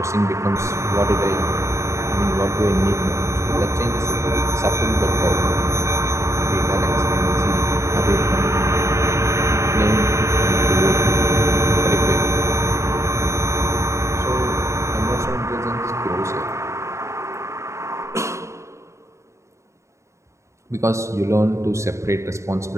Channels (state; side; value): late; left; 0.14 ms